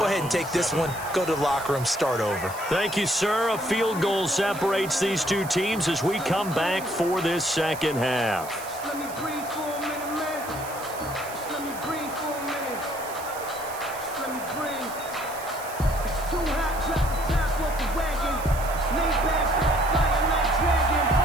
ahead and take this one, go to the locker room, start over. Thank you, sir. A field goal separates these two teams as we come back for this second half. Just let me breathe for a minute, man. Just let me breathe for a minute. Just let me breathe. It's too hot, drop the top off the wagon. Lay back, fire like dragon.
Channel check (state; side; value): noise; right; hiss, 14 dB below the sound